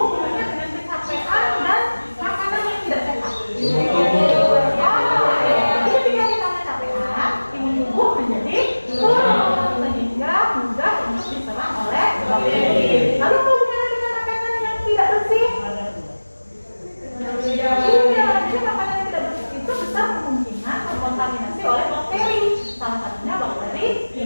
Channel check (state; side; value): inverted; both; correlation -1.00